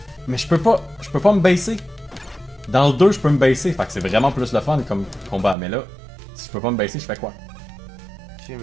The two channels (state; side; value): drops out; left; at 5.6 s